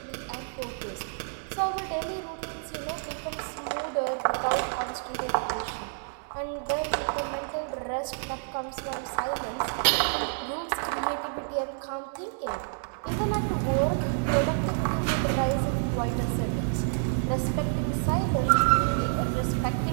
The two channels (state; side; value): silent; left; digital silence